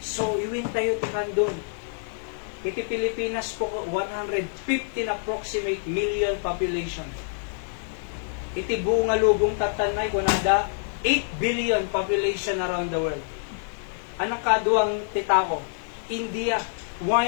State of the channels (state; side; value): silent; right; digital silence